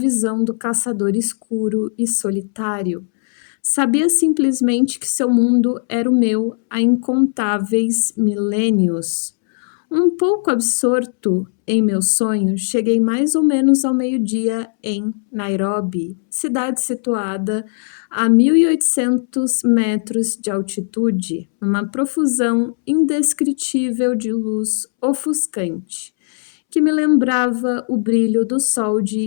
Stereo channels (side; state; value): right; silent; 67 dB below the other